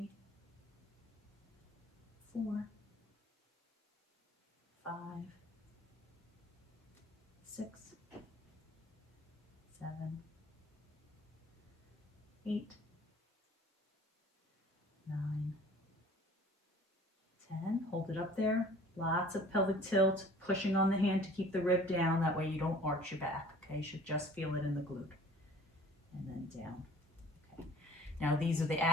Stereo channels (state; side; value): normal; both; correlation 0.50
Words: 4, 5, 6, 7, 8, 9, 10. Hold it up there. Lots of pelvic tilt, pushing on the hand to keep the rib down. That way you don't arch your back. Okay, you should just feel it in the glute. And then down. Okay. Now these are the